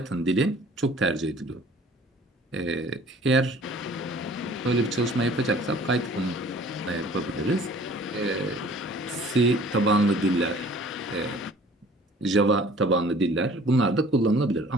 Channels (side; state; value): both; normal; correlation 0.51